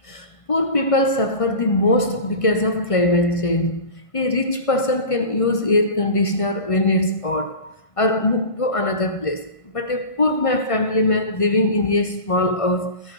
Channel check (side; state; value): right; late; 1.5 ms